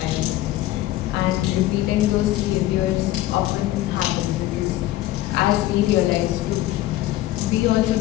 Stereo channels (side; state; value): right; quieter; 15.7 dB